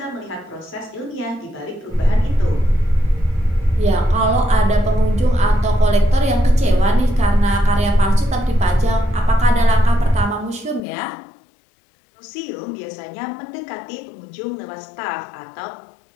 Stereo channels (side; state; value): right; drops out; at 10.8 s